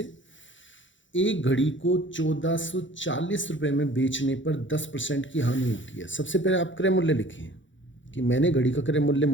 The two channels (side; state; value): right; late; 0.55 ms